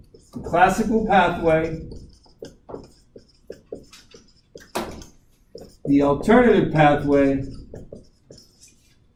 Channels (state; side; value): identical; both; correlation 1.00